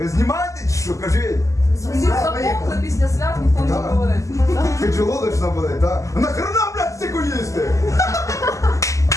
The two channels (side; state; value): right; late; 0.16 ms